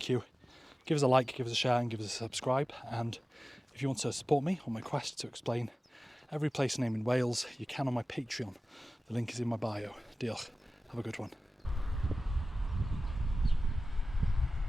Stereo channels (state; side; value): normal; both; correlation 0.96